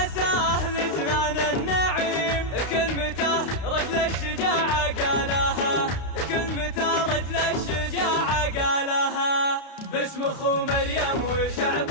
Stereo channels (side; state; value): right; late; 32 ms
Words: لجنان النعيم كلمته رجل الشجاعة قالها كلمته رجل الشجاعة قالها. باسم أخو مريم